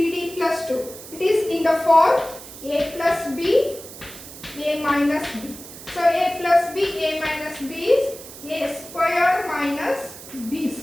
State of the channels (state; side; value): noise; right; hiss, 15 dB below the sound